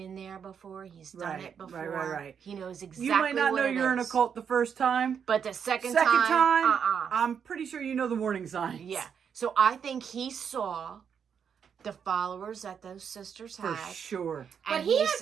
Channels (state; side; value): quieter; left; 7.3 dB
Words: there before, he's done Right, it before. right. He knows exactly. You might not what know it you're in a is. cult the first time. But the second Second time, time, I'm pretty sure you know the warning signs. Yeah. So I think he saw the followers that those sisters For had. sure. But And he had